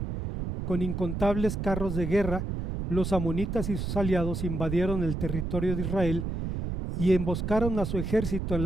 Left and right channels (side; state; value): right; noise; rumble, 3 dB below the sound